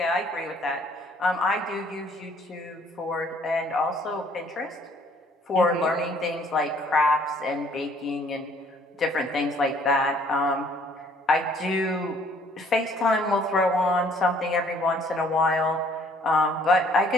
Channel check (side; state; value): both; normal; correlation 0.60